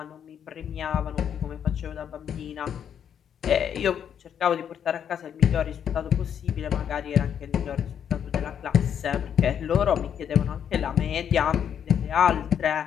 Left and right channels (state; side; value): quieter; right; 8.6 dB